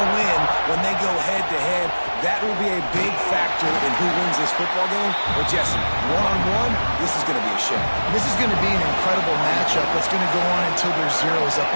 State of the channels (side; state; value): both; inverted; correlation -1.00